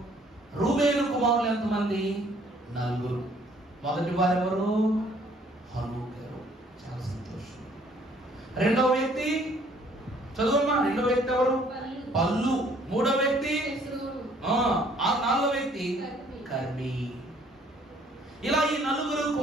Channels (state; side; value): normal; both; correlation 0.60